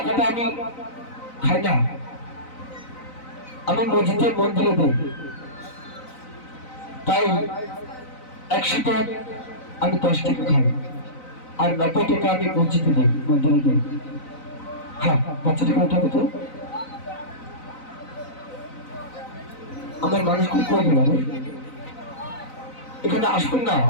আমি খাই না, আমি মসজিদে মন্দিরে দিই। তাই 100 টাকা আমি 10 টাকা খাই, আর 90 টাকা আমি মসজিদে দিই, মন্দিরে দিই। হ্যাঁ বাচ্চাটাকে উঠাবে তো, আমার মানুষগুলো কই গেল? এখানে আসবেন না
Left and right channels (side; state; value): right; late; 3.9 ms